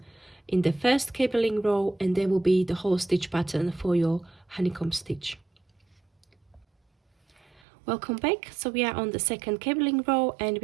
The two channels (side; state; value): left; drops out; at 7.6 s